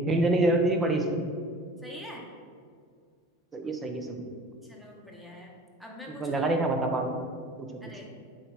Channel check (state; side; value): normal; both; correlation 0.45